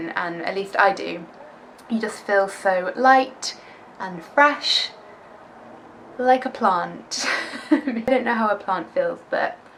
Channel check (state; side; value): identical; both; correlation 1.00